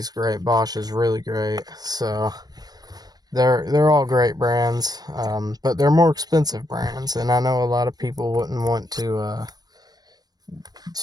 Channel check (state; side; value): late; left; 0.19 ms